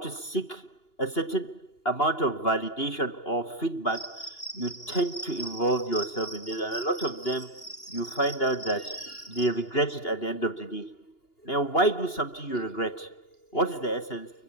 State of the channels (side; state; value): right; late; 2.9 ms